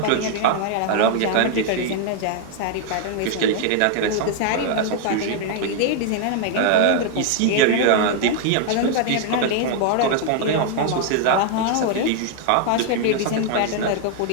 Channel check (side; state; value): both; different; correlation 0.00